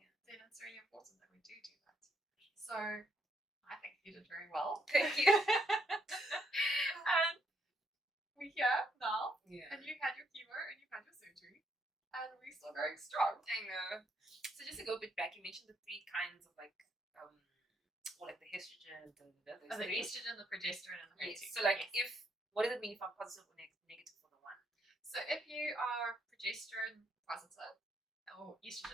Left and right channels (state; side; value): normal; both; correlation 0.73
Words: then it's really important that we do that. So I think you did very well. Thank you. And we're here now, Yeah. and you've had your chemo and you've had your surgery, and we're still going strong. I know. So just to go a bit back, you mentioned the three kinds of like or like the estrogen, The estrogen, the progesterone, and the HER2. So like what does it mean if I'm positive or negative for the one? So if you are progesterone positive or